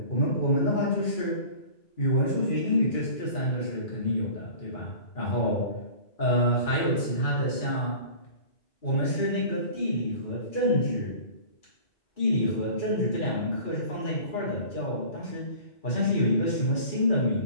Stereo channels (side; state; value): right; late; 2.4 ms